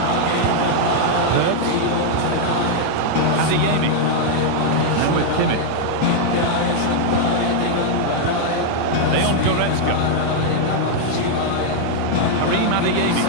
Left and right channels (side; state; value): both; different; correlation 0.00